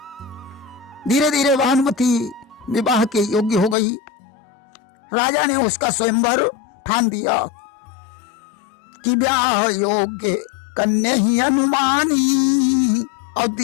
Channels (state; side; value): drops out; right; at 3.8 s